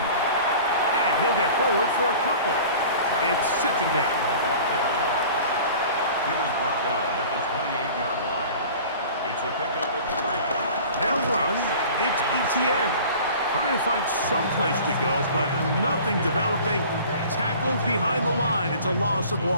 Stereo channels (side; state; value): both; inverted; correlation -0.43